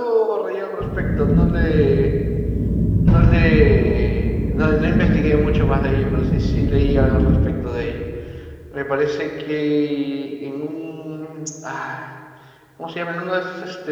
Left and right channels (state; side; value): identical; both; correlation 1.00